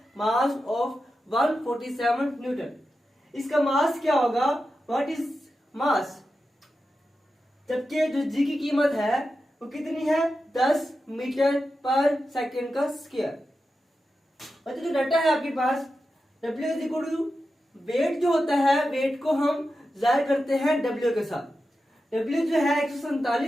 mass of 147 Newton. इसका मास क्या होगा? What is mass? जबकि जो जी की कीमत है वो कितनी है? 10 मीटर पर सेकेंड का स्क्वायर। बच्चों जो डाटा है आपके पास, W is equal to weight जो होता है, वेट को हम जाहिर करते हैं W के साथ। W जो है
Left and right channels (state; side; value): normal; both; correlation 0.91